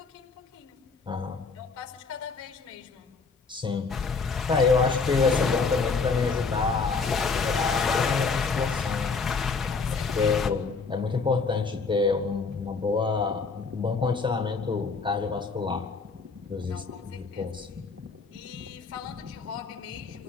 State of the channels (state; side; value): quieter; right; 4.6 dB